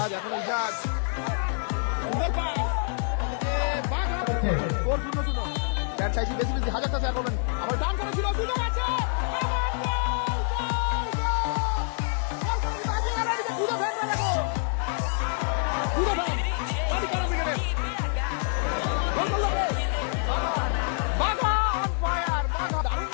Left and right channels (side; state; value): right; silent; 60 dB below the other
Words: এখন জাজ চাইছি বেশি বেশি হাজারটা শেয়ার করবেন আমার ডান করে ছিল সুযোগ আছে